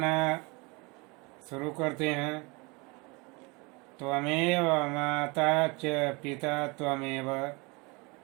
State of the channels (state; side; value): quieter; left; 27.8 dB